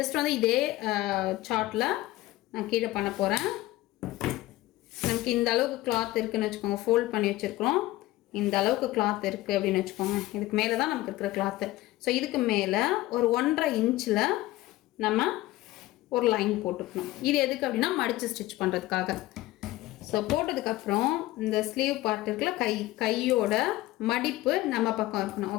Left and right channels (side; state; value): right; quieter; 17.4 dB